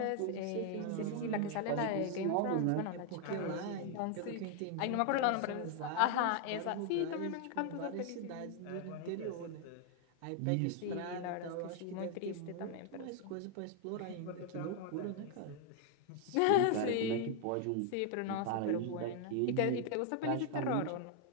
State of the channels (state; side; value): different; both; correlation 0.00